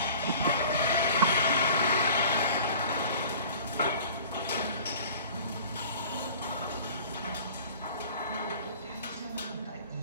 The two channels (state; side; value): inverted; both; correlation -0.45